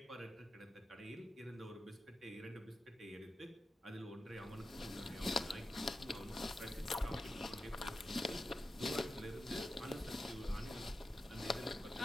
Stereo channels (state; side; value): normal; both; correlation 0.92